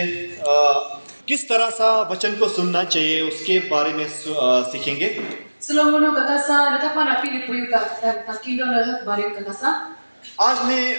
किस तरह सा वचन को सुनना चाहिए उसके बारे में सीखेंगे। आज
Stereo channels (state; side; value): inverted; both; correlation -1.00